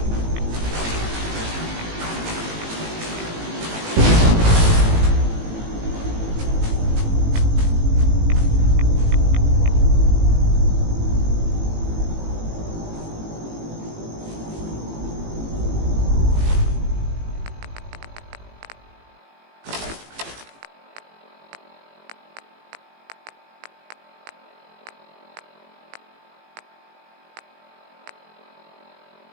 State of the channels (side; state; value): left; late; 18 ms